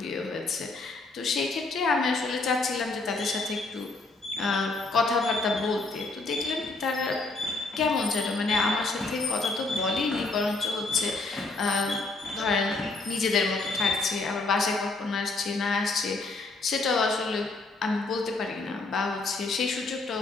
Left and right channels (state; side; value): quieter; right; 3.4 dB